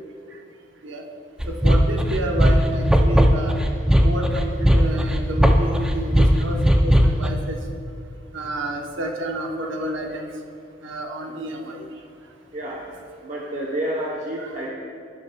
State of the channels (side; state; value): both; normal; correlation 0.88